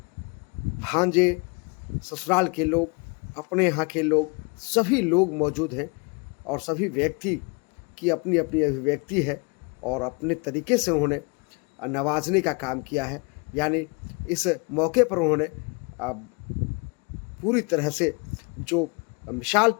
भांजे, ससुराल के लोग, अपने यहाँ के लोग, सभी लोग मौजूद हैं। और सभी व्यक्ति की अपनी अपनी अभिव्यक्ति है और अपने तरीके से उन्होंने नवाजने का काम किया है। यानी इस मौके पर उन्होंने पूरी तरह से जो मिसाल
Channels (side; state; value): right; quieter; 31.5 dB